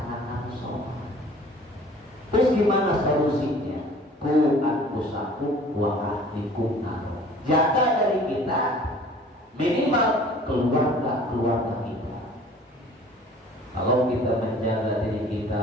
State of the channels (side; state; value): both; normal; correlation 0.49